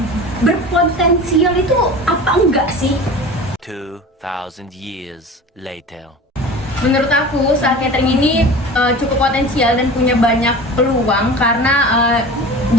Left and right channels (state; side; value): normal; both; correlation 0.36